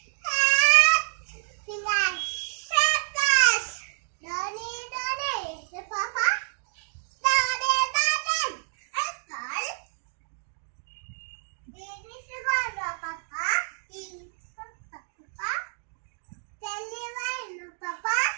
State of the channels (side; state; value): left; silent; 55 dB below the other